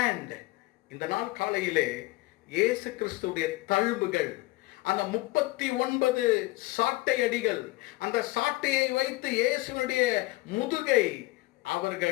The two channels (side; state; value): right; quieter; 20.8 dB